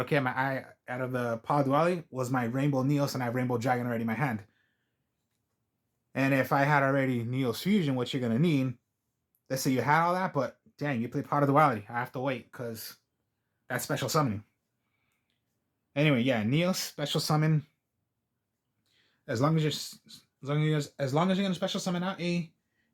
my eye out of the Pot of Duality was my Rainbow Neos, and I have Rainbow Dragon already in my hand. And if I had already Neos Fusion, which you're going to need, let's say you had all that, but dang, you play Pot of Duality. I have to wait because that's special summoning. Anyway, yeah, Neos special summon. As long as you're going to special summon out a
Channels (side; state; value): both; identical; correlation 1.00